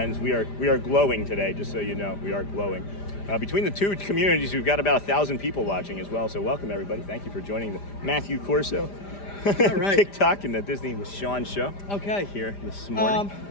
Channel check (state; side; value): late; right; 5.0 ms